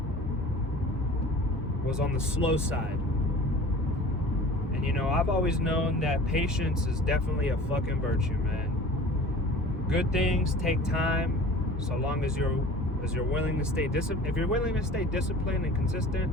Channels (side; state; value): both; normal; correlation 0.42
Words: the slow side. And I've always known that patience is definitely a fucking virtue, man. Good things take time, so long as you're willing to stay disciplined. If you're willing to stay disciplined and consistent,